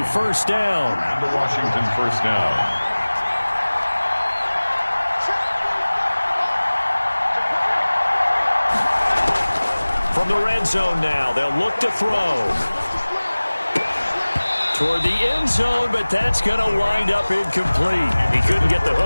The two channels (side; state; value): both; inverted; correlation -1.00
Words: first down. And the Washington first down. From the red zone now, they'll look to throw. Toward the end zone, but that's going to wind up incomplete. He couldn't get the